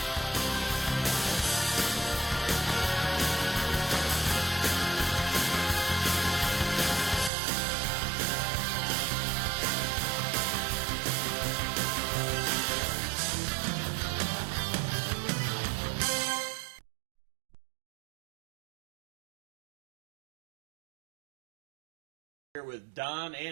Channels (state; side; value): drops out; left; at 7.3 s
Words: Here with Don